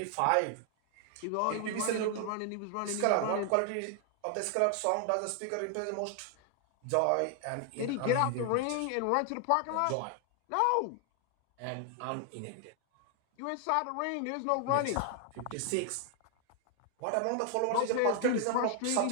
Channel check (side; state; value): both; different; correlation 0.00